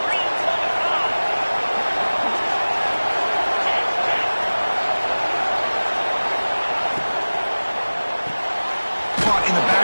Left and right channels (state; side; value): inverted; both; correlation -1.00